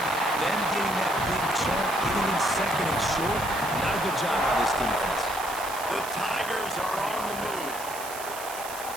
getting that big chunk, getting in second and short, not a good job by this defense. The Tigers are on the move.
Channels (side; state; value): right; noise; hiss, 11 dB below the sound